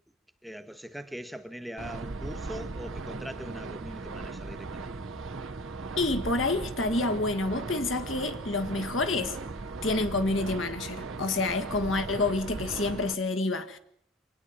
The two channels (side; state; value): both; normal; correlation 0.38